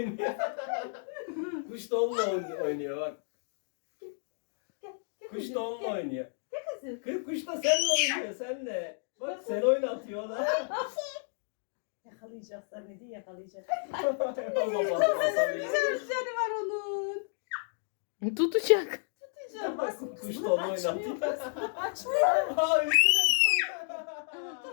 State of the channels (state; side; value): silent; right; digital silence